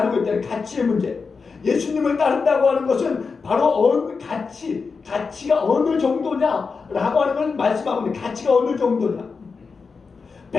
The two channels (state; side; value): quieter; right; 4.9 dB